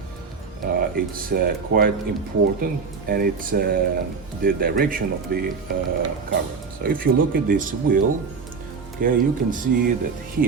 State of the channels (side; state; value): left; quieter; 5.2 dB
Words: it's quite important, and it's the direction of the cover. So if you look at this wheel, okay, you can see that